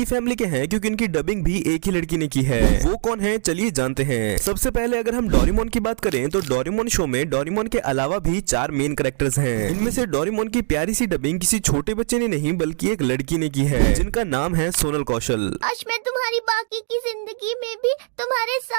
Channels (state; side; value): silent; left; digital silence